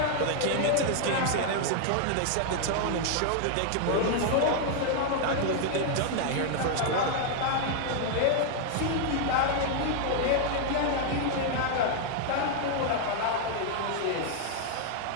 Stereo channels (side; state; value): both; different; correlation 0.00